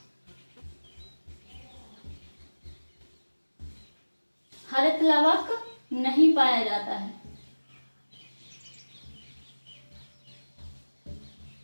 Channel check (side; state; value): both; inverted; correlation -1.00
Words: हरित लवक नहीं पाया जाता है।